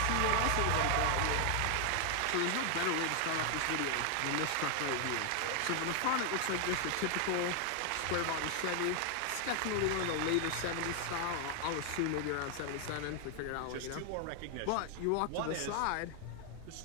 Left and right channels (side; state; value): both; different; correlation 0.00